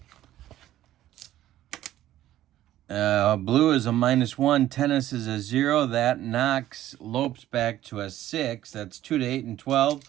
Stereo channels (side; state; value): left; quieter; 13.5 dB